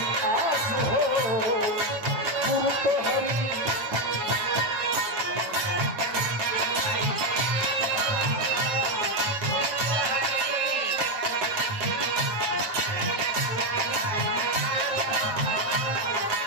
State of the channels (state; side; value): late; left; 9.0 ms